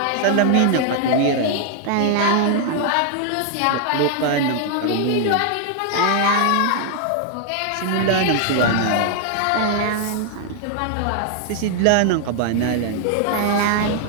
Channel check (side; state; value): both; different; correlation 0.00